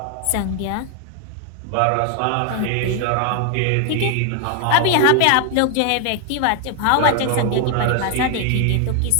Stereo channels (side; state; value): both; different; correlation 0.00